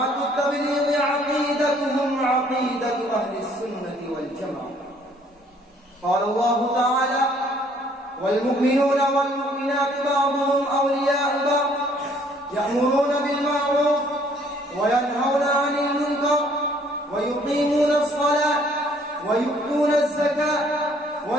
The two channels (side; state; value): both; normal; correlation 0.61